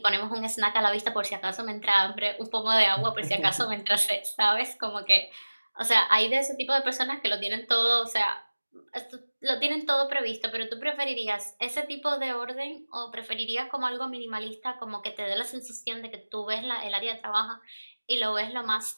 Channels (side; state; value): both; inverted; correlation -1.00